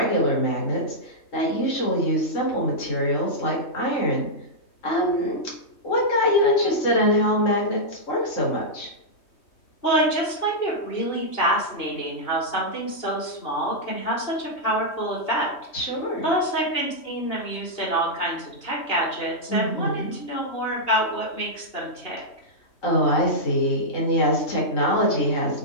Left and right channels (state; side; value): late; right; 3.2 ms